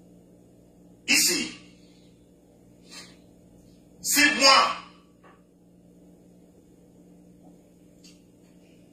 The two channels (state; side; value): identical; both; correlation 1.00